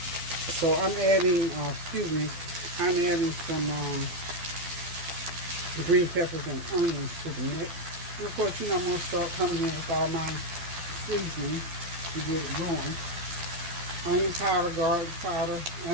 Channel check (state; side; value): late; left; 12 ms